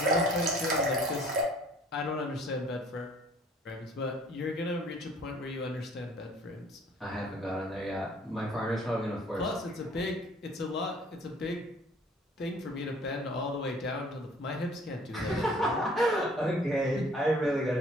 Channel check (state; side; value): normal; both; correlation 0.54